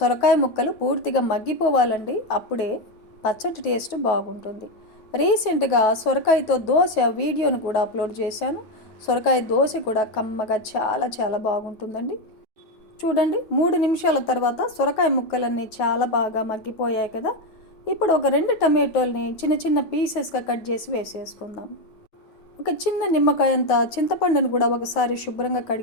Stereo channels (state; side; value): late; right; 9.4 ms